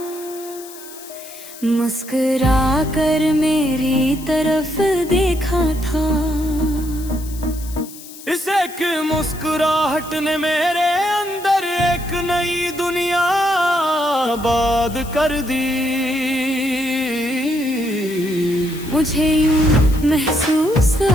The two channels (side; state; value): left; noise; hiss, 16 dB below the sound